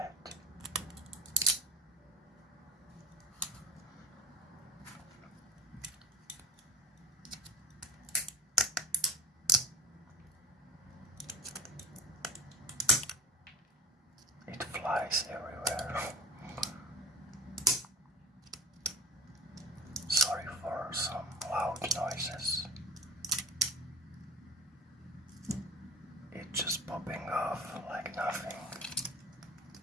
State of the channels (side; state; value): both; normal; correlation 0.39